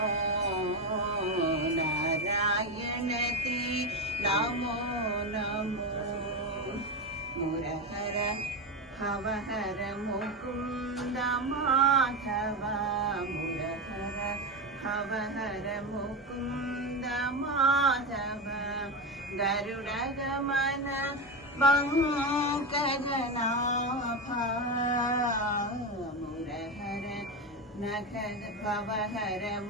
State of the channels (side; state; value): both; normal; correlation 0.16